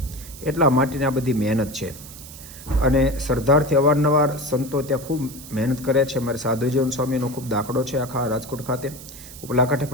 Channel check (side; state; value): right; noise; hiss, 16 dB below the sound